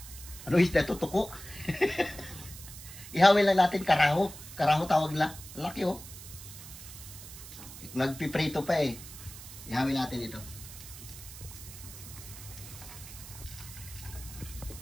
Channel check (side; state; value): right; noise; hiss, 14 dB below the sound